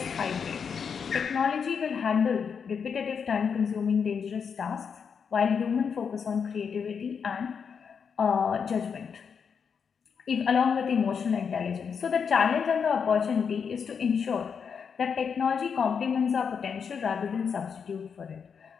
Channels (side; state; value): right; quieter; 6.5 dB